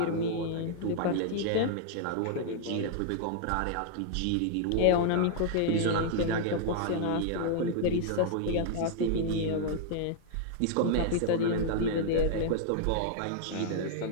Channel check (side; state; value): both; different; correlation -0.01